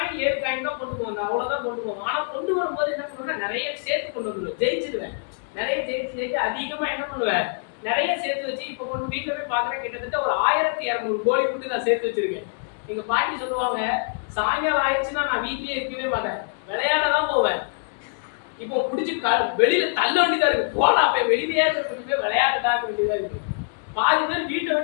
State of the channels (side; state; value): right; silent; digital silence